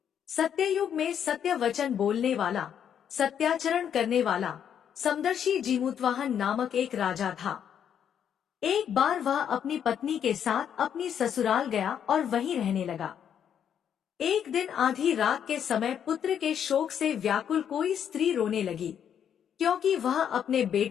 सत्ययुग में सत्य वचन बोलने वाला, सत्याचरण करने वाला समदर्शी जीमूतवाहन नामक एक राजा था। एक बार वह अपनी पत्नी के साथ अपनी ससुराल गया और वहीं रहने लगा। एक दिन आधी रात के समय पुत्र के शोक से व्याकुल कोई स्त्री रोने लगी, क्योंकि वह अपने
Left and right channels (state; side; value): quieter; right; 8.7 dB